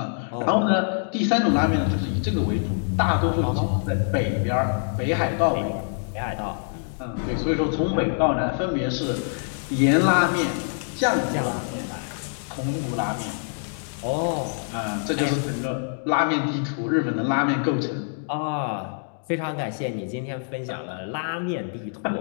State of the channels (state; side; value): silent; right; digital silence